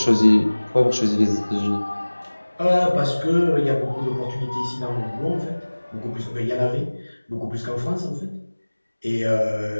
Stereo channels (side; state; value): both; inverted; correlation -1.00